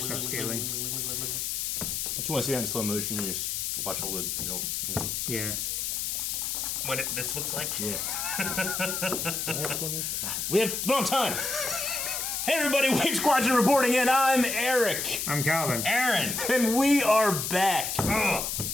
upscaling. Don't you want to see that in slow motion? You just watch all the, Yeah. What this looks like? Yeah. Do we have slow motion? We have wrong time. Hey everybody, Wave Squadron reporting in. I'm Eric. I'm Calvin. Aaron. And we are back.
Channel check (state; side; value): noise; left; hiss, 2 dB below the sound